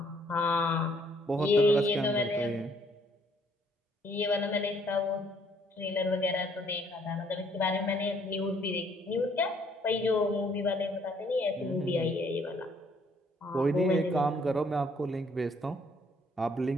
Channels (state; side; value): normal; both; correlation 0.65